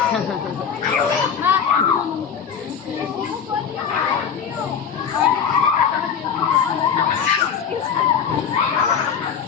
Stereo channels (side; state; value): right; quieter; 7.3 dB